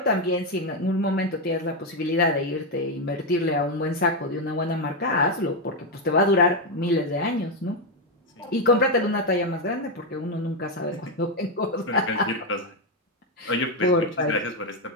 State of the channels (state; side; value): normal; both; correlation 0.05